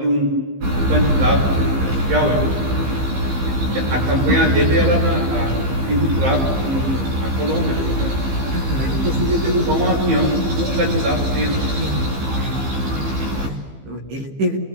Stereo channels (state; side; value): late; left; 15 ms